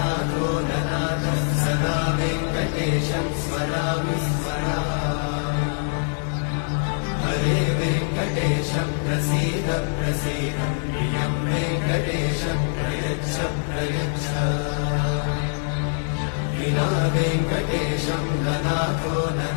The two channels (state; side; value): silent; right; digital silence